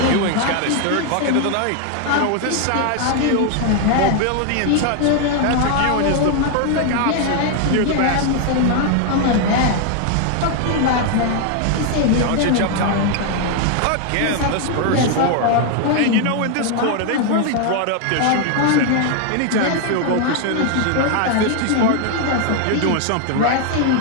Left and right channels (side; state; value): both; different; correlation 0.00